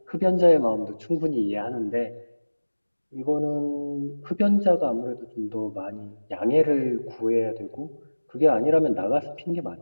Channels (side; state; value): both; inverted; correlation -1.00